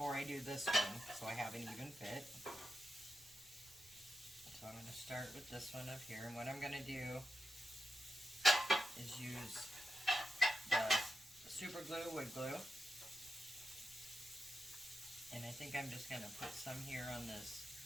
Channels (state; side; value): noise; right; rumble, 27 dB below the sound